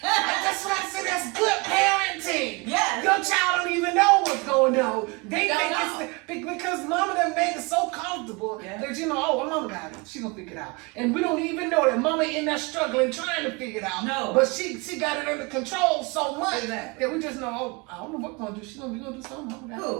That's what I said. That's good parenting. Yes. Your child don't even know what's going on. They Don't think know. it's because mama done made it so comfortable that well, mama got it. She gonna figure it out. And we don't even know that mama in there struggling, trying to figure it out. No. But she got it under control so much Exactly. that we just know, I don't know what gonna do. She gonna do something. Mama got it.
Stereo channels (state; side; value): quieter; left; 27.5 dB